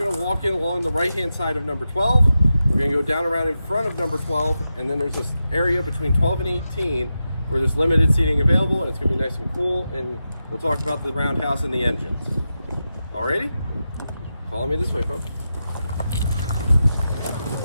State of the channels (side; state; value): both; inverted; correlation -0.90